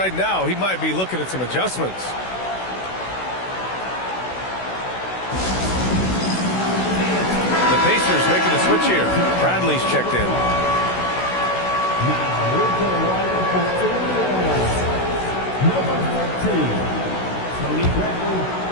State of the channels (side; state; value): right; late; 16 ms